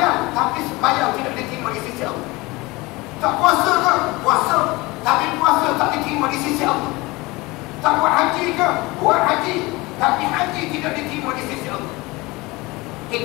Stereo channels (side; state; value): right; quieter; 22.6 dB